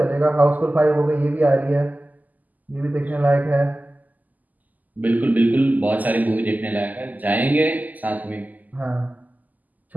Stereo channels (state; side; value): late; left; 0.081 ms